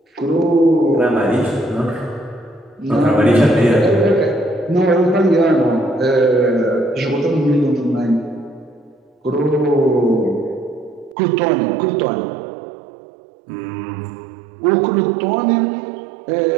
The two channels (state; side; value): drops out; left; at 11.2 s